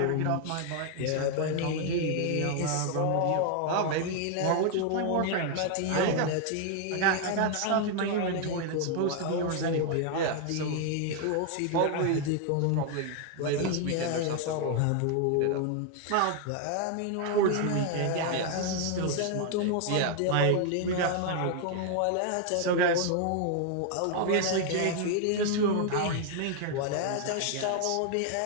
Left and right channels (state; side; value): different; both; correlation 0.00